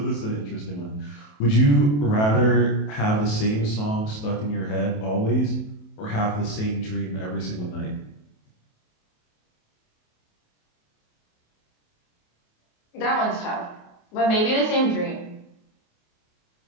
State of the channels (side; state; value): right; late; 28 ms